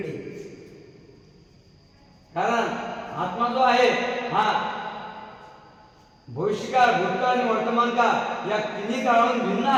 कारण आत्मा जो आहे हा भविष्यकाळ, भूतकाळ आणि वर्तमान काळ या तिन्ही काळाहून भिन्न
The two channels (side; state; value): both; identical; correlation 1.00